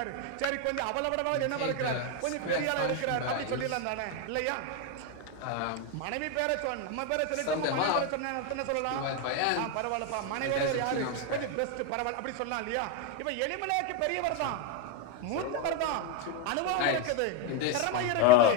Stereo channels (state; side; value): different; both; correlation 0.01